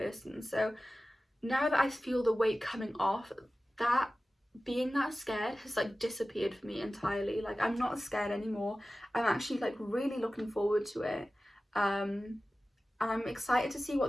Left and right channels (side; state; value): both; normal; correlation 0.96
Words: So now that I feel the weight coming off, that being that scared has like disappeared for me entirely. Like I'm not scared anymore. I'm actually like really looking forward to it. And I'm excited to see